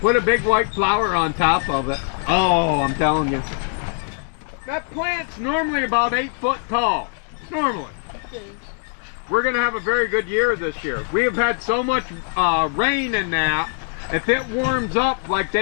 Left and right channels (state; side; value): silent; right; 57 dB below the other